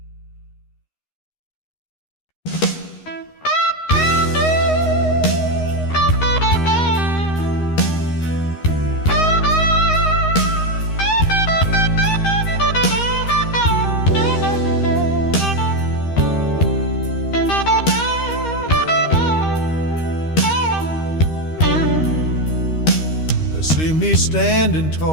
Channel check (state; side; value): late; right; 13 ms